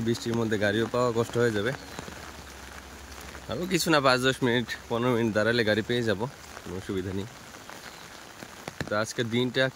বৃষ্টির মধ্যে গাড়িও পাওয়া কষ্ট হয়ে যাবে। আরও কিছু না, 5-10 মিনিট 15 মিনিট দাঁড়ালে গাড়ি পেয়ে যাব, কোনো অসুবিধা নেই। তো আজকের দিনটা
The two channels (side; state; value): both; identical; correlation 1.00